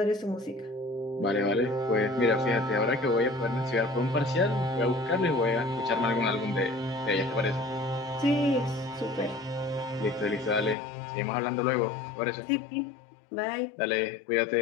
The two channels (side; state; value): right; drops out; at 10.8 s